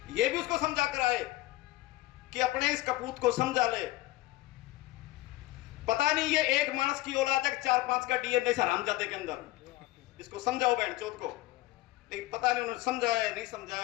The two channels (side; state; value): right; quieter; 18.2 dB